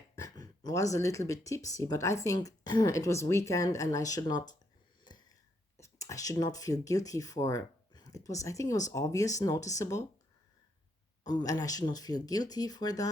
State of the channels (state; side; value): normal; both; correlation 0.76